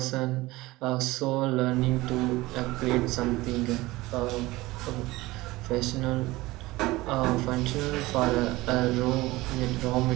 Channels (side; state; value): left; quieter; 19.7 dB